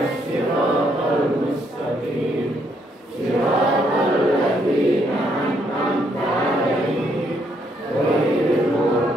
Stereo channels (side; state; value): both; normal; correlation 0.72